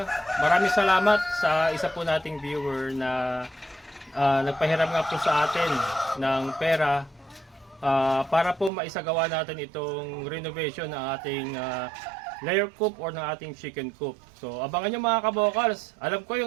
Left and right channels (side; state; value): left; drops out; at 8.7 s